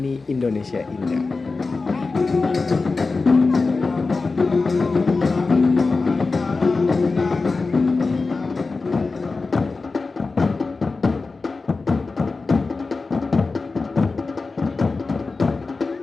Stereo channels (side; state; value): right; quieter; 4.0 dB